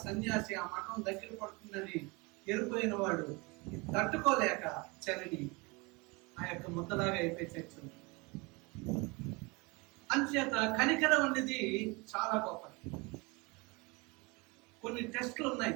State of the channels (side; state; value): left; quieter; 27.0 dB